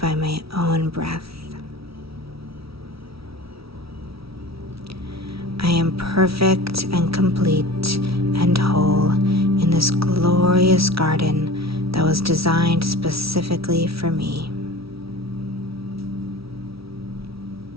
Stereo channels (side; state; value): left; late; 0.76 ms